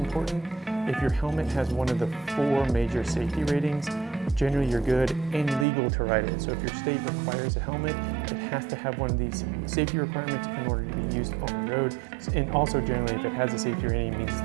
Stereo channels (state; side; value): drops out; left; at 5.7 s